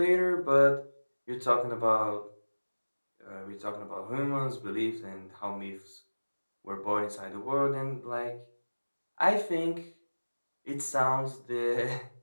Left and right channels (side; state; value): both; inverted; correlation -1.00